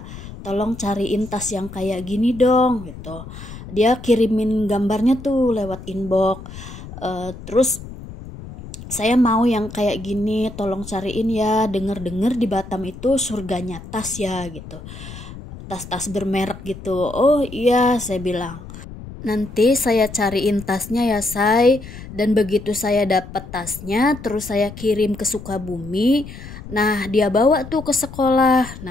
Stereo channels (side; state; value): left; noise; rumble, 13 dB below the sound